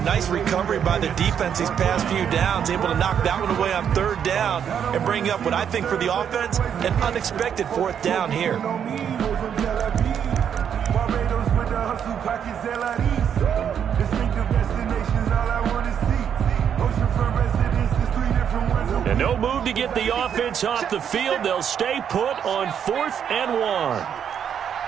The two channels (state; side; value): quieter; left; 8.4 dB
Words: nice recovery by the defense these past few downs, able to knock that one away on 3rd down and bring up what I think for the offense, an unexpected 4th down here. And no move to get the offense off the field. They'll stay put on 4th and 1.